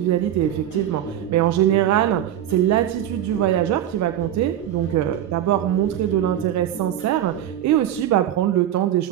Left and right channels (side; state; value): left; quieter; 11.3 dB